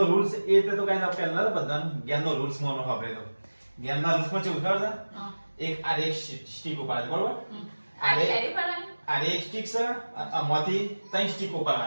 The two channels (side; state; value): both; inverted; correlation -1.00